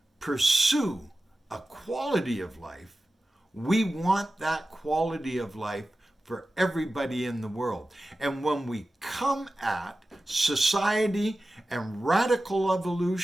pursue a quality of life, we want that quality of life for everybody in the world. And when we come at society and radical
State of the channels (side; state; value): both; normal; correlation 0.94